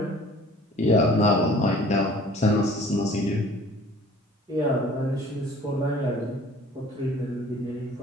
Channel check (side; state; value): both; normal; correlation 0.51